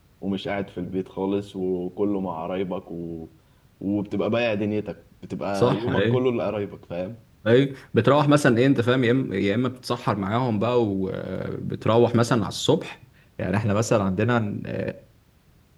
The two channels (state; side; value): identical; both; correlation 1.00